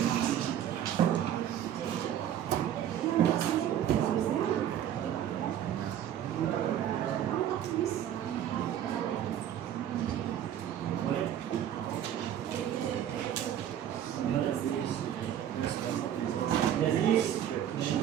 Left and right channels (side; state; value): left; quieter; 10.5 dB